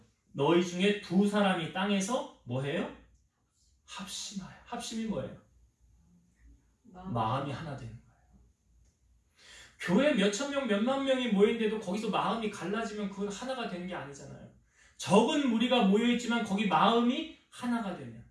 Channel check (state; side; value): identical; both; correlation 1.00